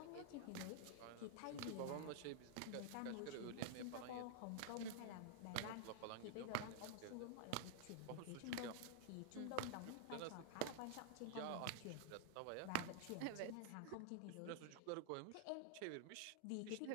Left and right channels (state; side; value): different; both; correlation -0.01